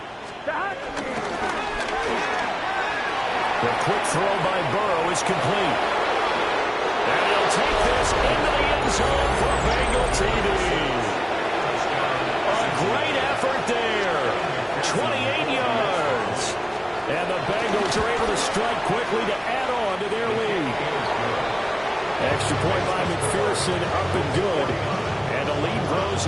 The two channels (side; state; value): both; identical; correlation 1.00